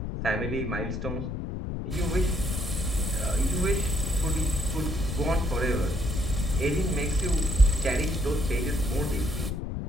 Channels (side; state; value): left; noise; rumble, 3 dB below the sound